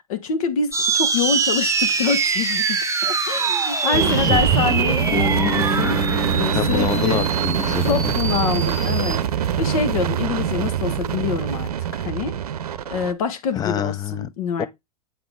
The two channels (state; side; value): normal; both; correlation -0.12